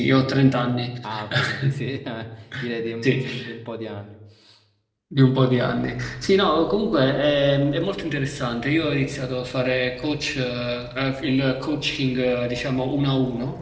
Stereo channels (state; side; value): identical; both; correlation 1.00